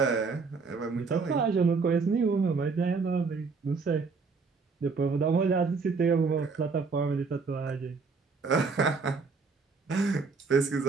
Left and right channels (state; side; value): quieter; left; 4.6 dB